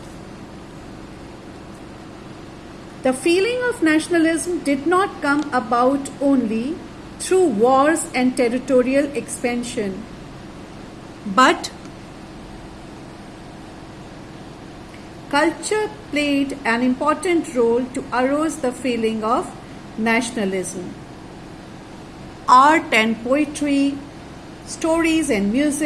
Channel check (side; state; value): both; identical; correlation 1.00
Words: The feeling of nationalism did not come about only through wars and territorial expansion, but culture played an important role to arouse the feeling of nationalism. Art and poetry, stories and